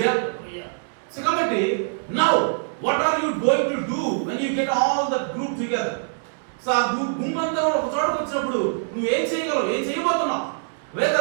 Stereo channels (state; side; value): silent; left; 63 dB below the other